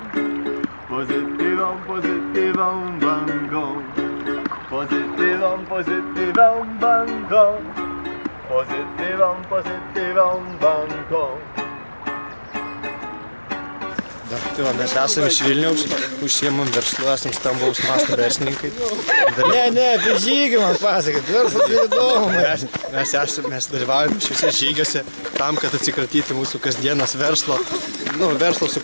Pozytywą, pozytywą bangą. Pozytywą, pozytywą bangą. Pozytywą, pozytywą bangą. Tai va, mes esame iš Vilniaus, užsiemam verslu, esam stambaus masto verslininkai. Ne, apie žygį man pasakot, verslas įdomu. Mes dalyvaujame šiuose žygiuose tam, kad atsikratyti mūsų kasdienos verslo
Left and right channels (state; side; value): inverted; both; correlation -1.00